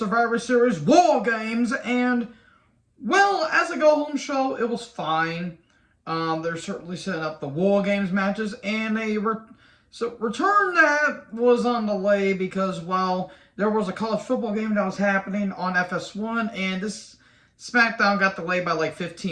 Series War Games, and, well, as a go-home show, it was fine. They're certainly setting up the War Games matches, and return that was on delay because, well, there was a college football game that was happening on FS1, and this Smackdown got delayed by like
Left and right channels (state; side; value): identical; both; correlation 1.00